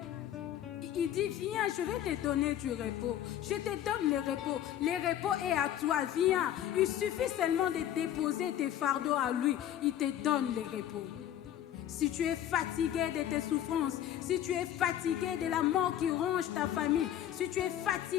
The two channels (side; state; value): right; quieter; 11.3 dB